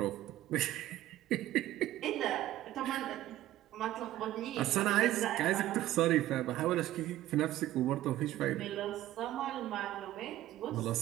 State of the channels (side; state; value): left; quieter; 14.4 dB